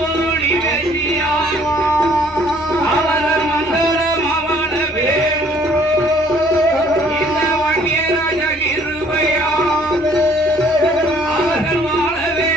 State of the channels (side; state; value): both; normal; correlation 0.59